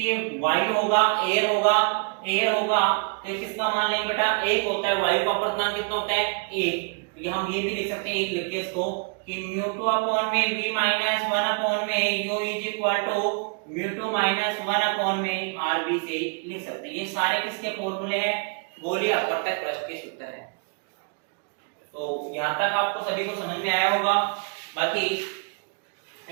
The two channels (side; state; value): left; quieter; 37.7 dB